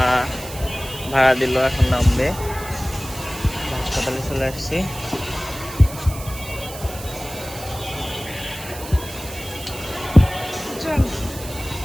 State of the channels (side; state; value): right; noise; hiss, 13 dB below the sound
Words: ভাড়া দিল, এখন নামবে। হাসপাতালে চলে আসছি।